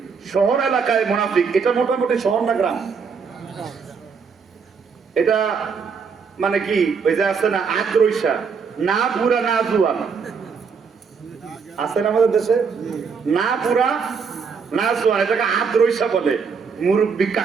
শহর এলাকায় মুনাফিক, এটা মোটামুটি শহর না গ্রাম? এটা মানে কি, ওই যে আছে না আদ্রৈশা, না বুড়া না জুয়ান, আছে না আমাদের দেশে? না বুড়া না জুয়ান, এটাকে আদ্রৈশা বলে। মুরব্বী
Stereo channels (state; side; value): quieter; left; 5.7 dB